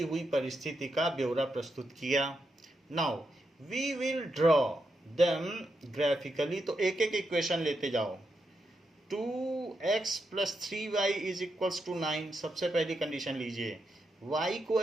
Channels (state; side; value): normal; both; correlation 0.84